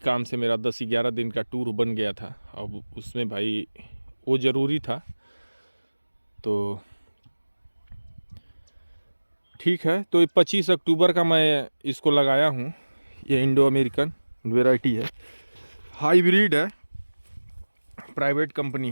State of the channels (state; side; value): inverted; both; correlation -1.00